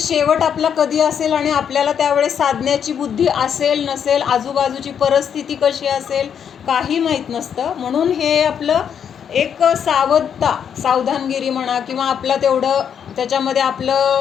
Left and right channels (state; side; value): quieter; right; 8.1 dB